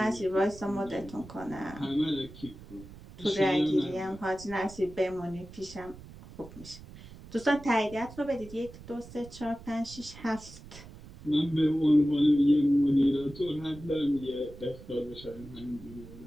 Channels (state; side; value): noise; right; rumble, 17 dB below the sound